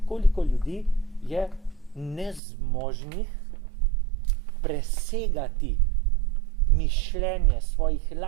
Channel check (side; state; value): left; drops out; at 2.4 s